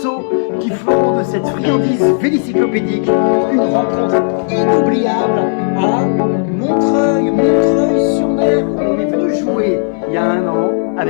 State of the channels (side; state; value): right; silent; digital silence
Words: qui font de cette friandise vélicyclopédique une rencontre inoubliable à Montreuil-sur-Mer, où on est venu jouer il y a 1 an